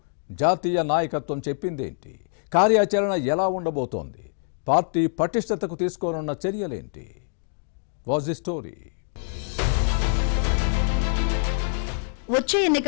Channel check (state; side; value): silent; right; digital silence